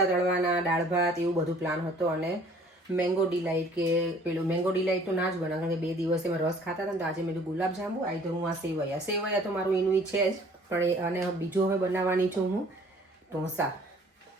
તળવાના, દાળ ભાત, એવું બધું પ્લાન હતો. અને મેંગો ડિલાઇટ કે પેલું મેંગો ડિલાઇટ તો ના જ બનાવ કારણ કે 2 દિવસે મેં રસ ખાતા હતા ને તો આજે મેં ગુલાબજાંબુ આવી તો હું આ સેવૈયા તો મારું એનું છે જ. પણ અને બીજું હવે બનાવવાની છું હું ઢોસા.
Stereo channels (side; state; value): both; normal; correlation 0.54